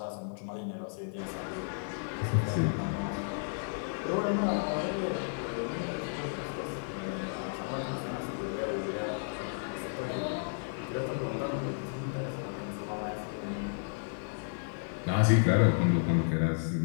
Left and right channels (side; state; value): right; silent; digital silence